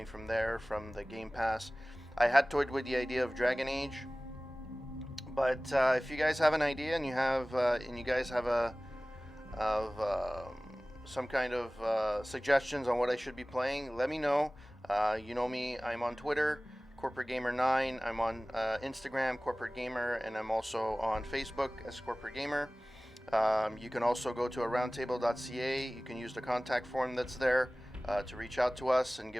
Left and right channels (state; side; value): normal; both; correlation 0.98